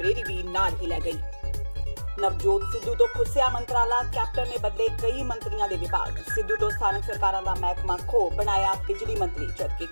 ਵੀ ਨਾਲ ਹੀ ਲੈ ਗਈ। ਨਵਜੋਤ ਸਿੱਧੂ ਤੋਂ ਖੁੱਸਿਆ ਮੰਤਰਾਲਾ, ਕੈਪਟਨ ਨੇ ਬਦਲੇ ਕਈ ਮੰਤਰੀਆਂ ਦੇ ਵਿਭਾਗ। ਸਿੱਧੂ ਤੋਂ ਸਥਾਨਕ ਸਰਕਾਰਾਂ ਦਾ ਮਹਿਕਮਾ ਖੋ ਬਣਾਇਆ ਬਿਜਲੀ ਮੰਤਰੀ, ਜਦਕਿ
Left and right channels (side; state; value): both; inverted; correlation -1.00